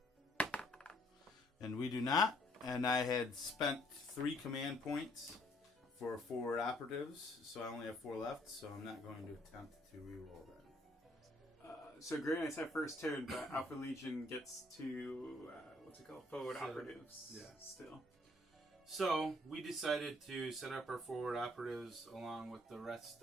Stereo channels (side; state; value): both; normal; correlation 0.64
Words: And we do not. And I had spent 3 command points for forward operatives, so I only have 4 left, so I'm not going to attempt to reroll that. So Grey Knights have first turn, but Alpha Legion gets to, forward operatives still. So we decided to set up our forward operatives along with the rest